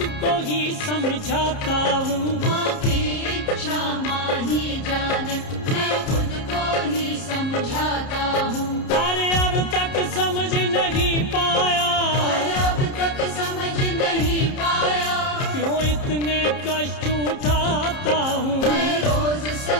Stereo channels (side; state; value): right; late; 30 ms